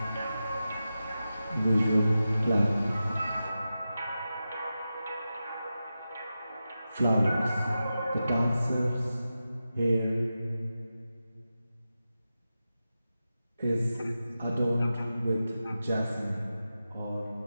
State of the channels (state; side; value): inverted; both; correlation -0.92